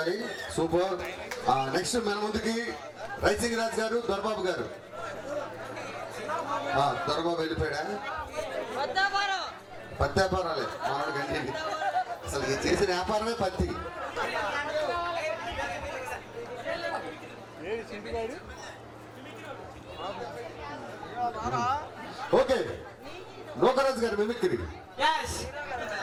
సూపర్. నెక్స్ట్ మన ముందుకి రైసింగ్ రాజ్ గారు, దొరబాబు గారు. దొరబాబు వెళ్ళిపోయాడా? పత్తి వ్యాపారాలే మనోడు గంటి. అసలు చేసిన వ్యాపారమే పత్తి. ఓకే నోకరాజు గారు మిమిక్రీ.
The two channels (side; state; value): both; identical; correlation 1.00